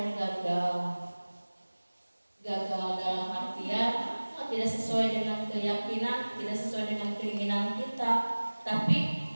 gagal dalam artian tidak sesuai dengan keyakinan, tidak sesuai dengan keinginan kita, tapi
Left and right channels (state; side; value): inverted; both; correlation -1.00